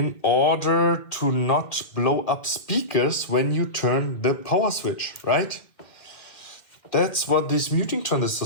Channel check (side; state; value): right; late; 2.0 ms